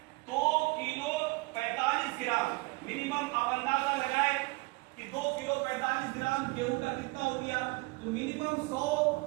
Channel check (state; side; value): quieter; left; 25.5 dB